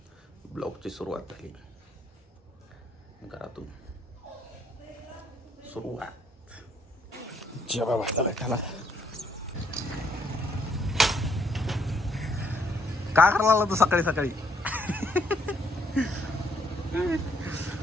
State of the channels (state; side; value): normal; both; correlation 0.69